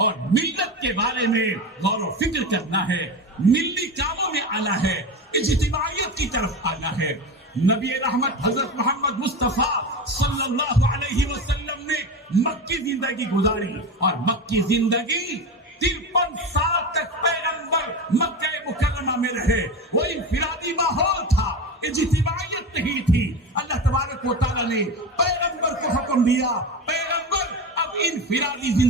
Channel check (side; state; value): both; normal; correlation 0.23